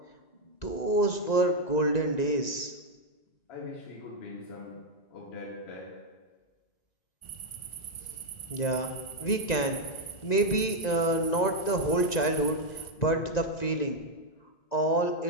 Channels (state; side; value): late; right; 1.9 ms